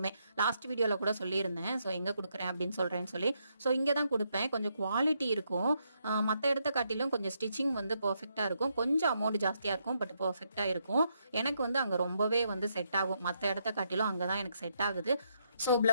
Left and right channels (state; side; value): inverted; both; correlation -0.78